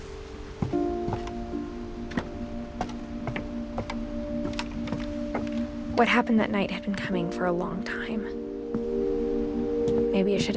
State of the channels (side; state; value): both; identical; correlation 1.00